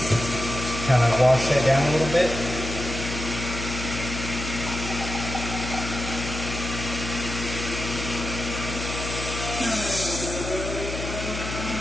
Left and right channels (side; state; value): left; noise; hum, 6 dB below the sound